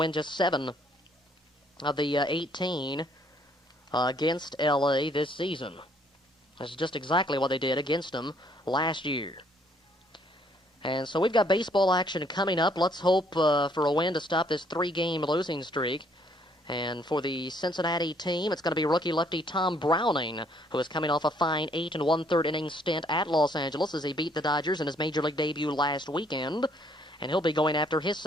just 7 of the 18 against L.A. this season. That's just exactly what they did against them last year. And so we've got baseball action coming up. Let's hope for a win to stop this 3-game losing streak. And for the Cincinnati team, it's going to be rookie lefty Tom Browning, who is coming off a fine 8 1/3 inning stint at Los Angeles as he beat the Dodgers in his major league debut last weekend. And he'll be going after his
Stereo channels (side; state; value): both; normal; correlation 0.66